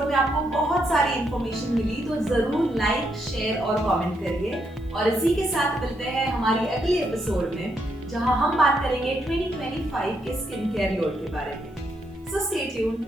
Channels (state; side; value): normal; both; correlation 0.77